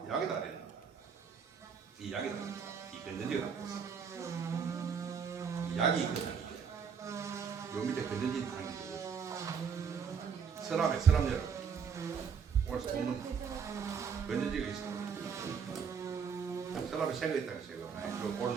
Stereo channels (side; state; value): left; quieter; 6.5 dB